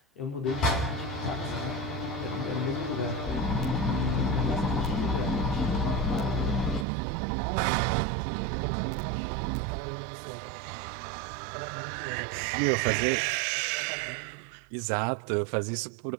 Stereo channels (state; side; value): drops out; left; at 6.9 s